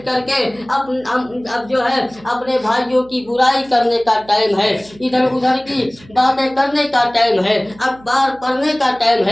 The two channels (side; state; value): right; noise; hum, 24 dB below the sound